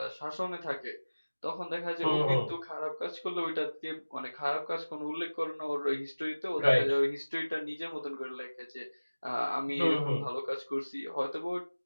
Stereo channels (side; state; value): both; inverted; correlation -1.00